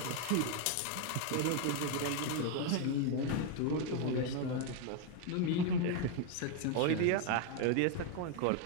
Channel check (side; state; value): both; different; correlation 0.01